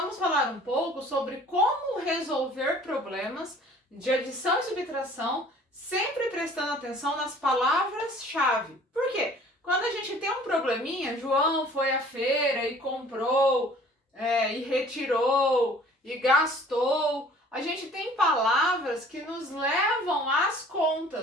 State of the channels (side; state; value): both; normal; correlation 0.51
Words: falar um pouco sobre como resolver problemas de adição e subtração, sempre prestando atenção nas palavras-chave. Por quê? Quando a gente tem um probleminha, João foi à feira e comprou, e retirou, e gastou. A gente tem palavras que nos levam às